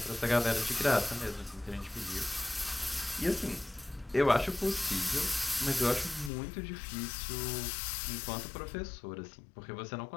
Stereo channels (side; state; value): right; drops out; at 6.3 s